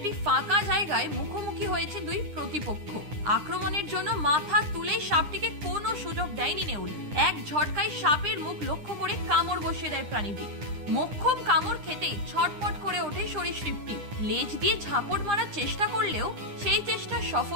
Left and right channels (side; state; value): left; late; 9.9 ms